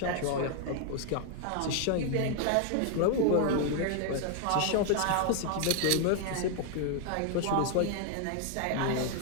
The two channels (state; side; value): different; both; correlation 0.00